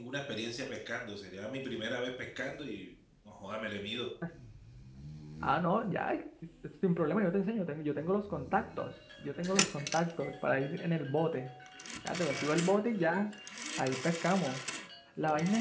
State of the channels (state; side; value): identical; both; correlation 1.00